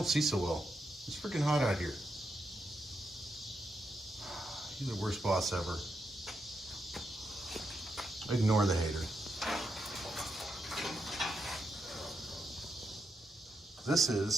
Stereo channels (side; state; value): both; normal; correlation 0.83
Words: see so well. It's freaking hot out here. You're the worst boss ever. Ignore the hater. This